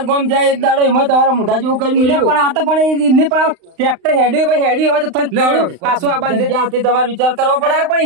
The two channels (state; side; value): late; left; 35 ms